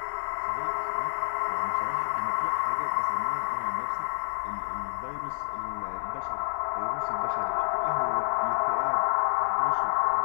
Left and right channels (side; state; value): right; silent; digital silence